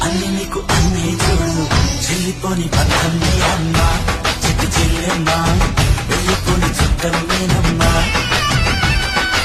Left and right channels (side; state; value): both; identical; correlation 1.00